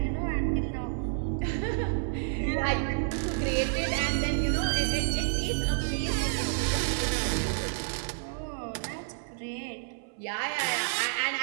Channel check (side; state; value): left; silent; 58 dB below the other